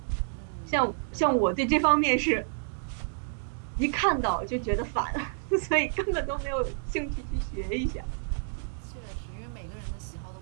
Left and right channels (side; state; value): left; silent; digital silence